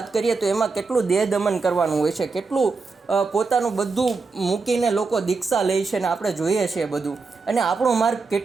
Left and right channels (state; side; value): quieter; left; 4.3 dB